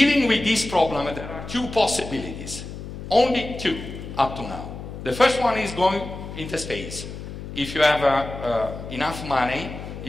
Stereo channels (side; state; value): left; noise; hum, 10 dB below the sound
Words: with this problem, there are two possibilities. Only two up to now. The first one is going into space. If you have enough money,